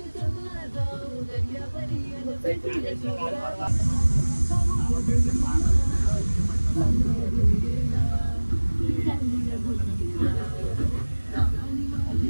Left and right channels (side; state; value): both; inverted; correlation -1.00